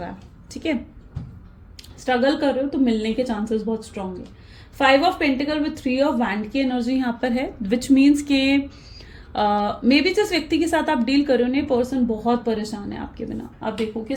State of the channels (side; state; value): both; identical; correlation 1.00